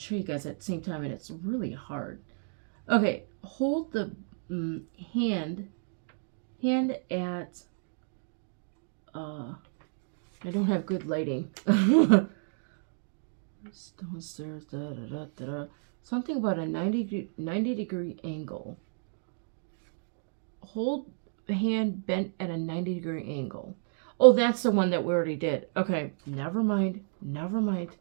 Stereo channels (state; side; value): silent; left; digital silence